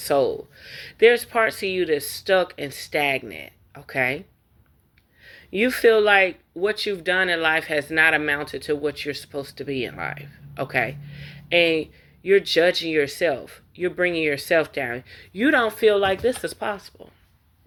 There's parts of you that's stuck and stagnant, okay? You feel like what you've done in life has not amounted to what you're supposed to be in life, okay? And you're judging yourself. You're bringing yourself down. You don't feel like this is possible.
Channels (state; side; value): identical; both; correlation 1.00